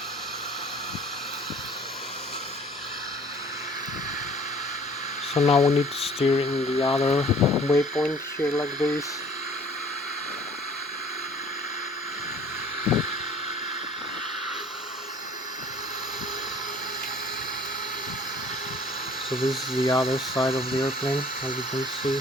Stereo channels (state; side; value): normal; both; correlation 0.52